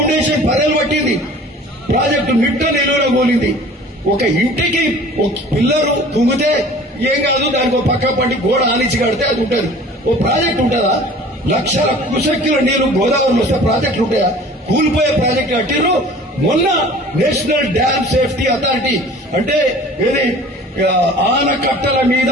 పదేలు పట్టింది, ప్రాజెక్టు మిట్ట నిలువలో కూలింది. ఒక ఇంటికి ఒక పిల్లరు తుంగితే ఏం కాదు, దానికి ఒక పక్క పట్టి గోడ ఆనిచి కడితే అది ఉంటుంది. ఓ ప్రాజెక్ట్ ఉంటుందా? లక్షల కుశక్తుల నీరు గోదావరిలో వస్తే ప్రాజెక్టులు ఉంటాయా? కూలిపోయే ప్రాజెక్టు కట్టిరు. మొన్న నేషనల్ డ్యామ్ సేఫ్టీ అథారిటీ అంటే ఏది ఆనకట్టల మీద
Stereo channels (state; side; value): normal; both; correlation 0.46